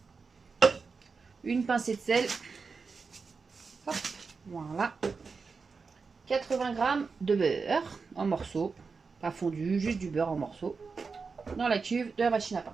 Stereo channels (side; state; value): left; quieter; 4.8 dB